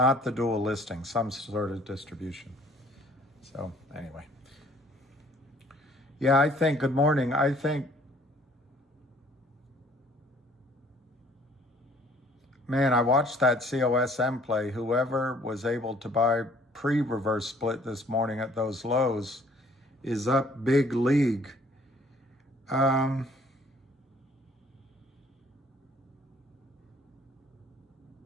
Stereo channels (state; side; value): normal; both; correlation 0.58